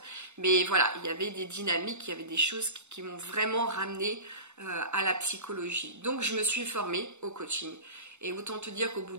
Mais voilà, il y avait des dynamiques, il y avait des choses qui m'ont vraiment ramené à la psychologie. Donc je me suis formée au coaching. Et autant te dire qu'au bout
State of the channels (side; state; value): left; late; 0.82 ms